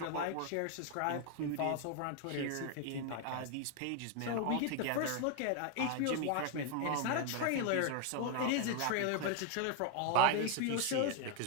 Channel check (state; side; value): different; both; correlation 0.01